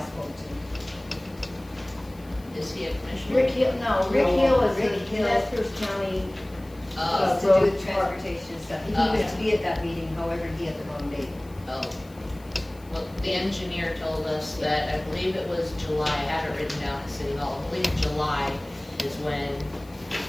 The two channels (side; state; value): left; noise; hiss, 26 dB below the sound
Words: to. Is he a commissioner? Rick Hill, no, Rick No, Hill is Rick the Hill. Nez County. It's to do with transportation and stuff. He Oh. was to be at that meeting, however, he had the wrong date. Oh. Well, the engineer told us that, I believe it was July, I had it written down at City Hall, I believe July is when,